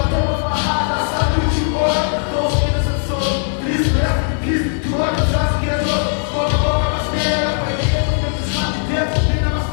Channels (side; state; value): right; silent; 64 dB below the other